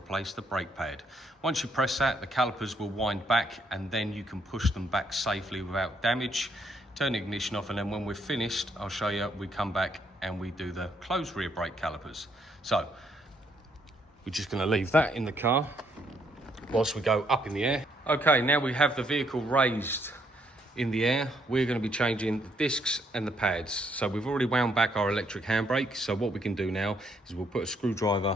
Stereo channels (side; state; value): both; normal; correlation 0.71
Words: the brake pad. Once you press that, the calipers will wind back and then you can push them back safely without damage. Turn the ignition off, and then when we're finished, I'll show you, we come back and we do the closed rear brake calipers. So we're just going to leave that in the car whilst we go up in the air. Okay, now we have the vehicle raised in the air. We're going to be changing the discs and the pads. So we've already wound back our electric handbrake. So what we can do now is we'll put a